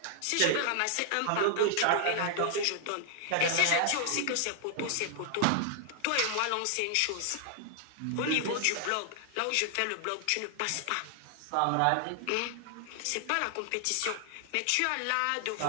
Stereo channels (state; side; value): different; both; correlation 0.00